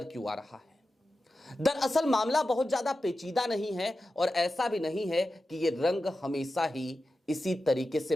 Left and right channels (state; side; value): normal; both; correlation 0.92